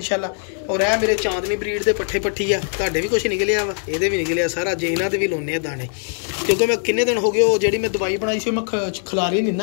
ਔਰ ਇਹ ਮੇਰੇ ਚਾਂਦਨੀ ਬਰੀਡ ਦੇ ਪੱਠੇ ਪੱਠੀ ਆ, ਤੁਹਾਡੇ ਵੀ ਕੁਝ ਨਿਕਲਿਆ ਵਾ, ਇਹਦੇ ਵੀ ਨਿਕਲਿਆ ਸਾਰਾ। ਜੇ ਇਹਨਾਂ ਤੇ ਵੀ ਲਾਉਣੇ ਆ ਦਾਣੇ, ਕਿਉਂਕਿ ਮੈਂ ਕਿੰਨੇ ਦਿਨ ਹੋ ਗਏ ਉਹ ਜਿਹੜੀ ਮੈਂ ਦਵਾਈ ਬਣਾਈ ਸੀ ਮੈਂ ਖਿਲਾਰੀ ਨਹੀਂ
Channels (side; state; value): right; silent; 65 dB below the other